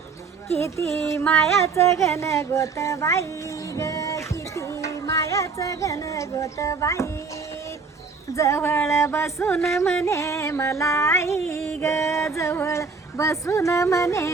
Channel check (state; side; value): quieter; left; 4.8 dB